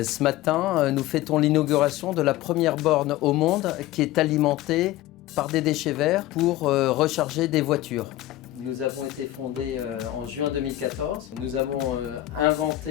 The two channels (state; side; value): quieter; right; 15.2 dB